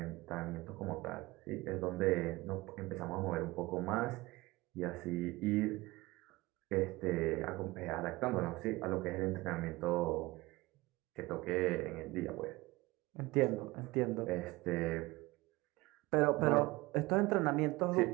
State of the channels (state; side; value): quieter; left; 20.9 dB